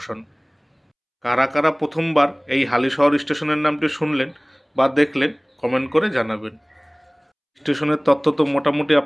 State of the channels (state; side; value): identical; both; correlation 1.00